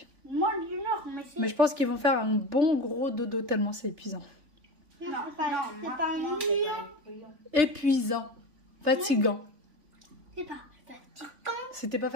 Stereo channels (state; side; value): late; left; 3.5 ms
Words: Moins d'une heure, mais c'est... Mais je pense qu'ils vont faire un bon gros dodo tellement c'est épuisant. Non, c'est pas ennuyant. Épuisant. Fatigant. C'est pas fatigant. C'était pas